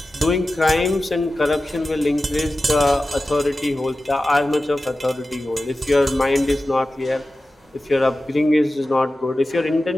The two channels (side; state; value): both; normal; correlation 0.94